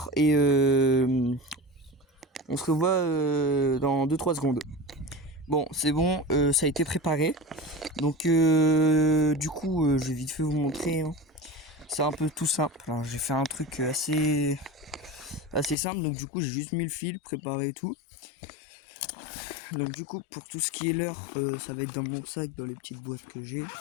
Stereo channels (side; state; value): right; drops out; at 15.8 s